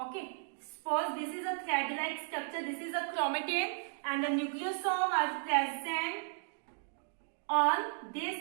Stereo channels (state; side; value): silent; left; digital silence